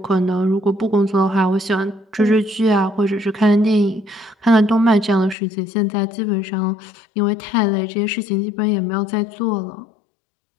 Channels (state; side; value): drops out; right; at 5.4 s